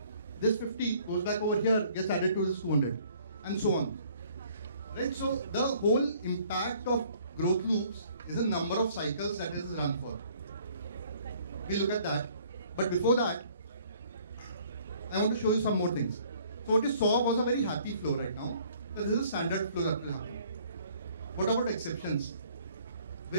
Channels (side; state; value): both; inverted; correlation -0.58